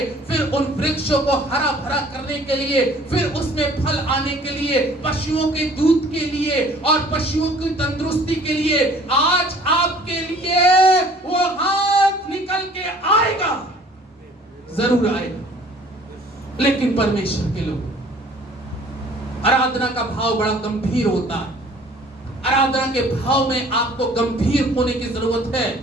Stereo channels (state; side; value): normal; both; correlation 0.53